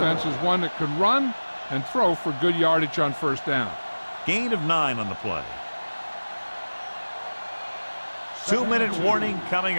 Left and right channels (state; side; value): inverted; both; correlation -1.00